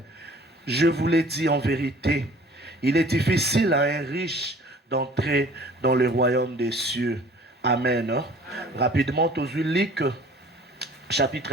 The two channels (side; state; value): both; normal; correlation 0.50